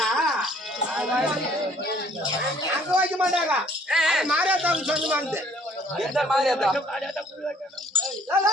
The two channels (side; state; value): both; normal; correlation 0.60